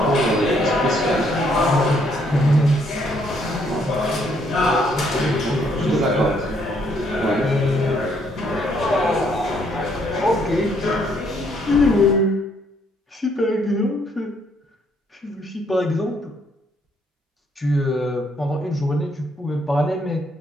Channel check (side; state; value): both; normal; correlation 0.69